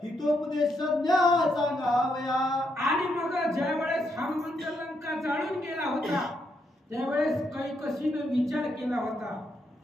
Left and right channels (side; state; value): both; normal; correlation 0.78